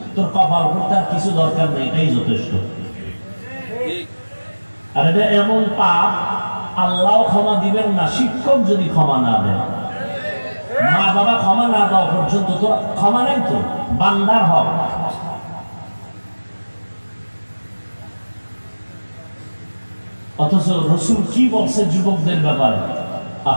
তোর কপাল করতে আর কিছু দরকার নেই, এটাই যথেষ্ট। আর এটা এমন পাপ আল্লাহ ক্ষমা দিবেন না শিক্ষক যদি ক্ষমা না দেয়। মা বাবা ক্ষমা না দেওয়া পর্যন্ত তোর ক্ষমা নেই, তো বান্দার হক। অথচ রসুল কি বলছে যুবকদের ব্যাপারে?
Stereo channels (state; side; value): inverted; both; correlation -1.00